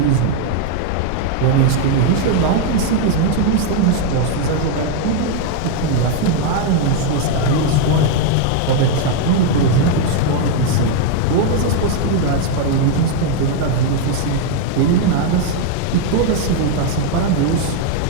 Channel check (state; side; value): different; both; correlation 0.00